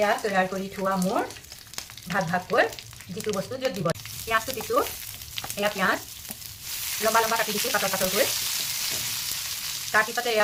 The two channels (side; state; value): both; identical; correlation 1.00